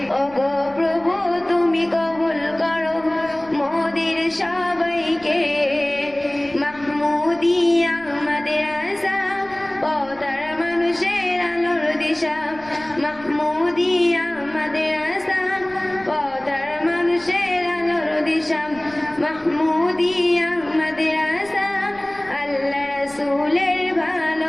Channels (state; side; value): noise; left; rumble, 25 dB below the sound